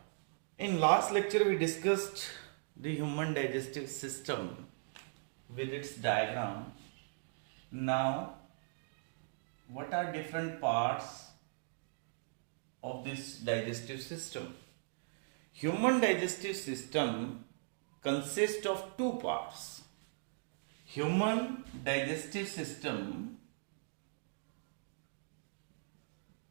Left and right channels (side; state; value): left; silent; digital silence